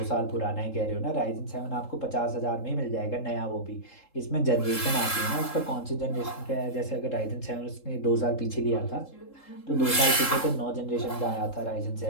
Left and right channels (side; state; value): right; late; 3.7 ms